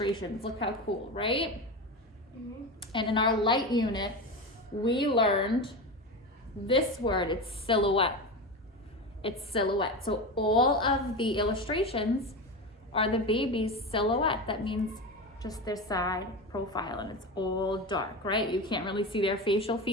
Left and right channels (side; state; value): both; normal; correlation 0.22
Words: Look how cool, right? Mm-hmm. And in our light unit, we learned this word, it's silhouette. It's silhouette. So all of the illustrations are the baby's silhouette. That means just their side profile, and it's all dark, right? You can't really see their facial